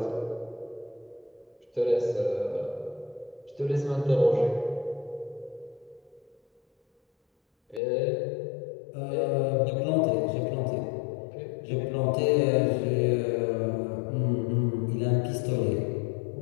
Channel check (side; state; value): right; drops out; at 7.8 s